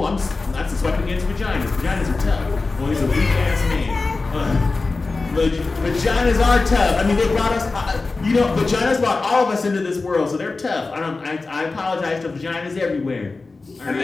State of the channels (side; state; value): right; quieter; 3.7 dB